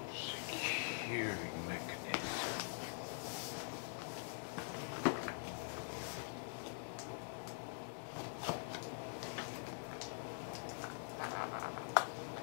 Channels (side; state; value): right; silent; digital silence